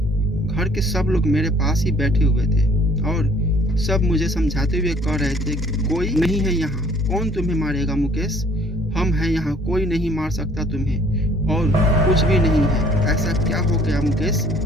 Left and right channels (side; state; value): both; normal; correlation 0.57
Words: घर के सब लोग मेरे पास ही बैठे हुए थे और सब मुझे समझाते हुए कह रहे थे, कोई नहीं है यहाँ, कौन तुम्हें मारेगा मुकेश, हम हैं यहाँ, कोई नहीं मार सकता तुम्हें, और कुछ भी नहीं है, ऐसा क्या हो गया मुकेश